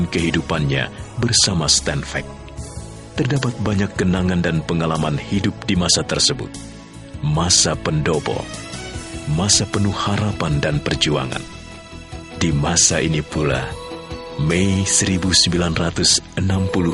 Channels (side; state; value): both; identical; correlation 1.00